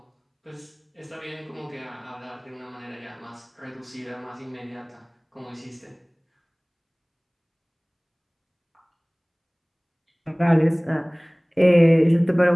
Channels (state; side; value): identical; both; correlation 1.00